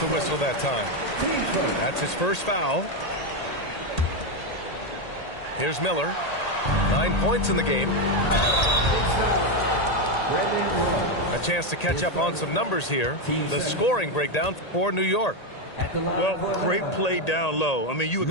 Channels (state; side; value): late; right; 1.8 ms